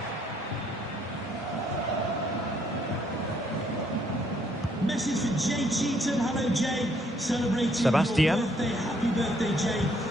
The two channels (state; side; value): normal; both; correlation 0.68